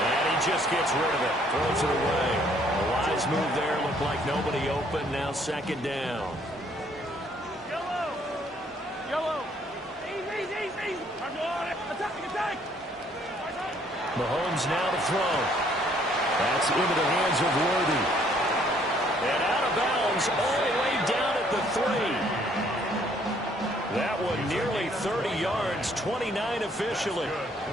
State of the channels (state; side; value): normal; both; correlation 0.64